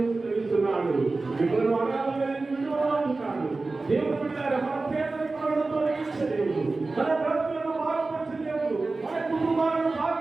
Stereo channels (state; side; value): quieter; left; 3.5 dB